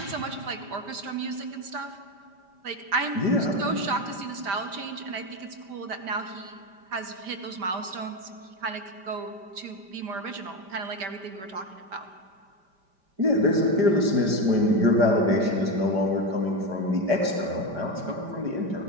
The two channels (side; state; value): left; late; 5.1 ms